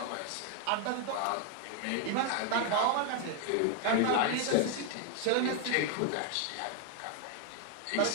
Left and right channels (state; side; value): different; both; correlation 0.00